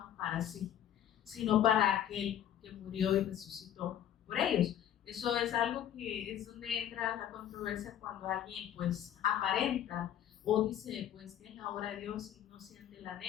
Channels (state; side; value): quieter; right; 10.6 dB